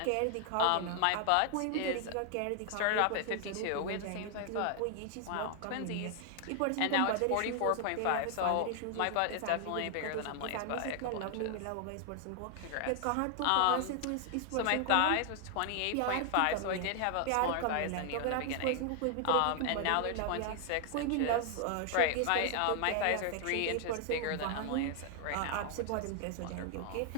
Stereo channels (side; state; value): both; different; correlation 0.00